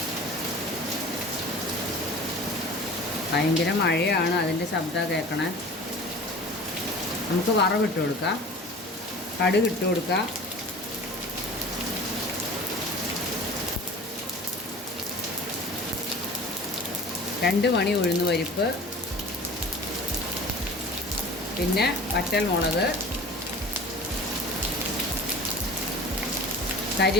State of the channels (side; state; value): both; normal; correlation 0.40